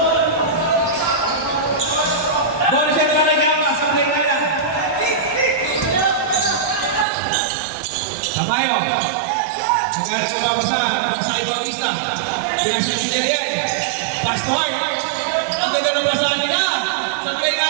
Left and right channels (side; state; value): left; drops out; at 7.1 s